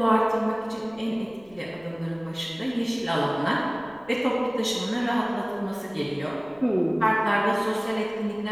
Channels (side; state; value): left; noise; rumble, 27 dB below the sound